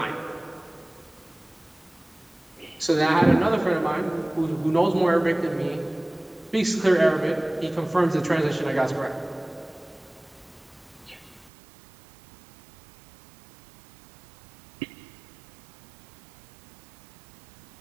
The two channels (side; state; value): left; drops out; at 11.5 s